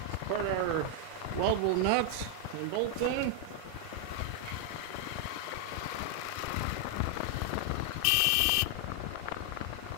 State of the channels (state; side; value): different; both; correlation 0.00